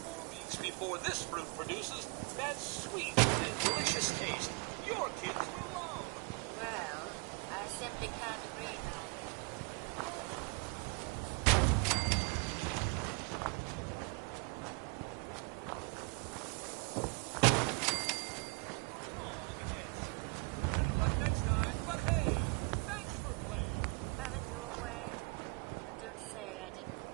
more weeks before this fruit produces that sweet and delicious taste your kids will love. Well, I simply can't agree, darling. Better luck next time, but hey, thanks for playing. Have it your way, but don't say I didn't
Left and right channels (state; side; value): quieter; left; 32.9 dB